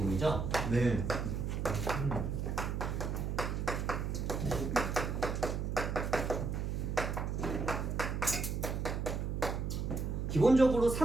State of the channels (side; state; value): right; noise; hum, 1 dB below the sound